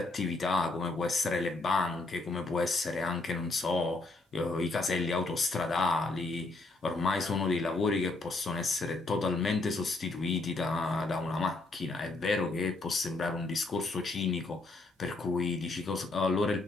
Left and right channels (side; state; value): right; quieter; 3.3 dB